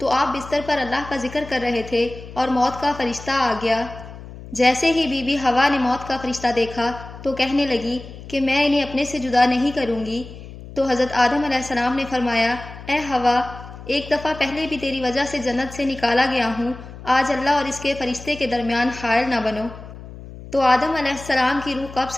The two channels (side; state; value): left; noise; hum, 15 dB below the sound